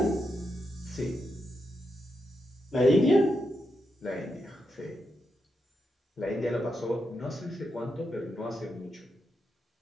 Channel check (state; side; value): normal; both; correlation 0.84